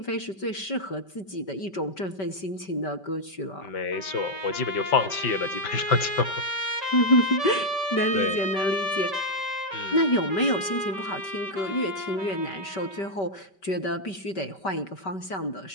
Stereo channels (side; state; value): right; late; 5.2 ms